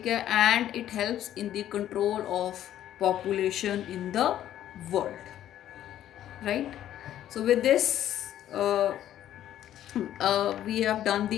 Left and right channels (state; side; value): quieter; right; 11.8 dB